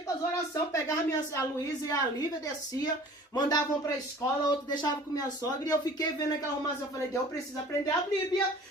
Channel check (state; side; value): normal; both; correlation 0.47